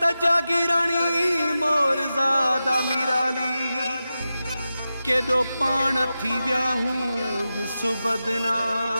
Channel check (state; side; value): inverted; both; correlation -0.92